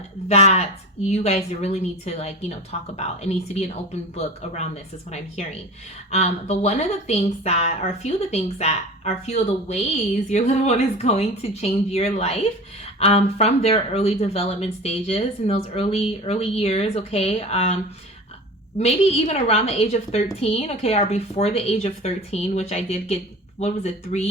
you guys really need to talk about. It needs to be an open book around this, is what I'm hearing. But one of the things that, or a few of the ways your little one is going to change your life from their early development stages in those early years, okay, maybe even around the age of 13, okay, or before the age of 13, which I did get,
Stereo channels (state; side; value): normal; both; correlation 0.34